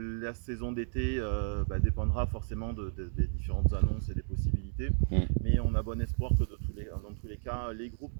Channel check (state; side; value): silent; left; 56 dB below the other